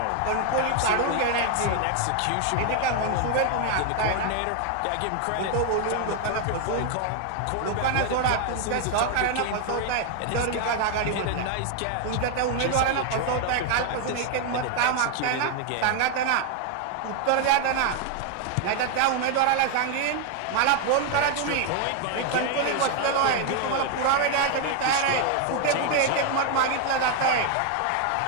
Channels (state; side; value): different; both; correlation 0.00